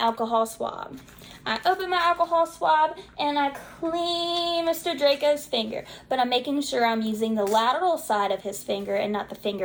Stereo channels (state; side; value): identical; both; correlation 1.00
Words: swab. I open my alcohol swab and I clean Mr. Draco's finger, but I'm making sure I'm using the lateral side of his finger and not the